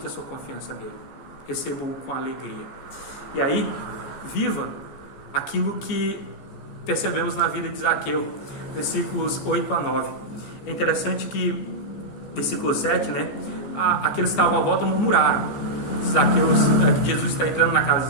a sua confiança nele. Receba-o com alegria. E aí, viva aquilo que percebemos na vida de Zaqueu, versículos 8 a 9. É interessante que, versículo 7, né? Aqueles que estavam à volta murmuraram. Que Jesus está entrando na casa de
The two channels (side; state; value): right; late; 14 ms